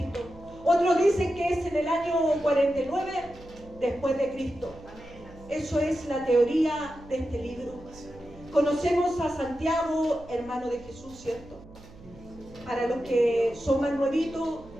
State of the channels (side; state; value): right; noise; hum, 20 dB below the sound